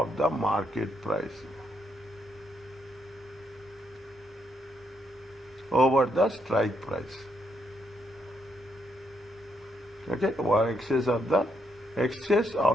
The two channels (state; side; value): normal; both; correlation 0.77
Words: the market price over the strike price. Okay, or excess of